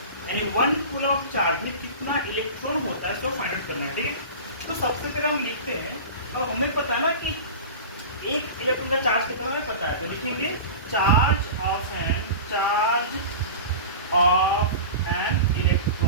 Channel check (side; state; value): both; inverted; correlation -0.32